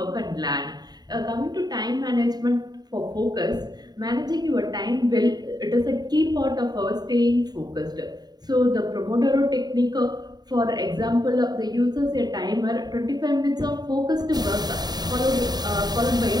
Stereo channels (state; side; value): late; left; 0.20 ms